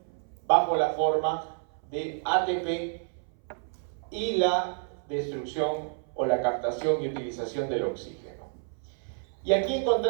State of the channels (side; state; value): left; silent; 58 dB below the other